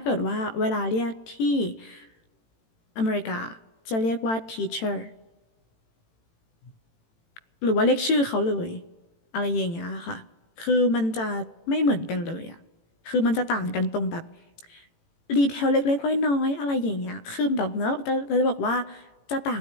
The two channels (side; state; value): right; late; 18 ms